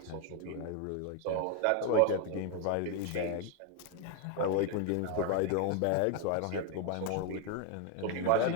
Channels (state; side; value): different; both; correlation 0.01